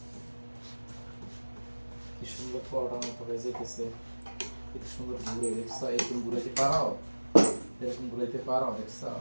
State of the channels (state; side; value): inverted; both; correlation -1.00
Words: কি সুন্দর পরোটার মতো হয়ে যেতেছে, কি সুন্দর ঘুরে, দেখছো? এরকম ঘুরাইতে পারো, এরকম ঘুরাইতে পারো, দেখছো?